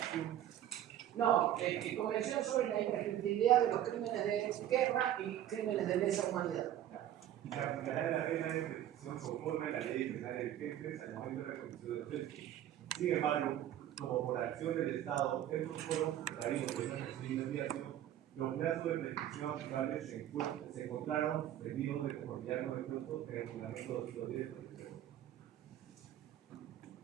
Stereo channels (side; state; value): left; quieter; 11.8 dB